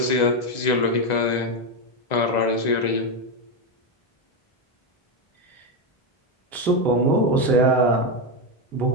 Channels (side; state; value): right; late; 2.0 ms